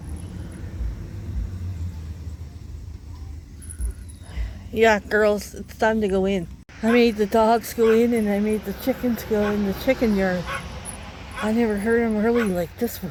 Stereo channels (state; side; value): identical; both; correlation 1.00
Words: Yeah, girls, it's time to go in. I made the dogs go in and I made the chickens go in the chicken yard. I never heard them early like this